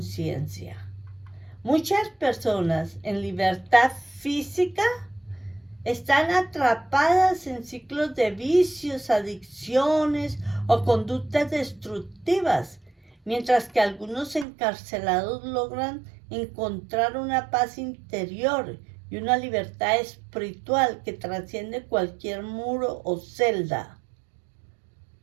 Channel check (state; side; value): drops out; left; at 14.5 s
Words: Muchas personas en libertad física están atrapadas en ciclos de vicios, adicciones o conductas destructivas, mientras que algunos encarcelados logran encontrar una paz interior y una libertad espiritual que trasciende cualquier muro o celda.